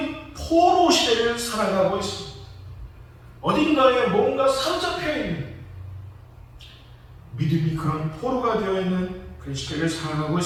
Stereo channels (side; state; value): both; identical; correlation 1.00